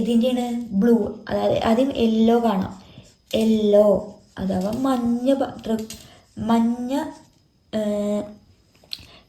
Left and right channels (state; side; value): identical; both; correlation 1.00